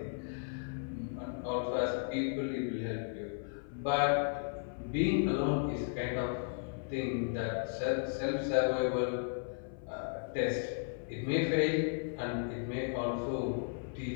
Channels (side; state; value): right; silent; 54 dB below the other